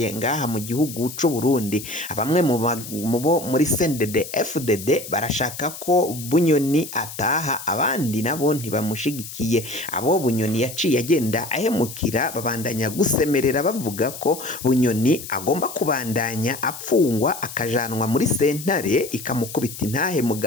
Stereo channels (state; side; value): noise; left; hiss, 11 dB below the sound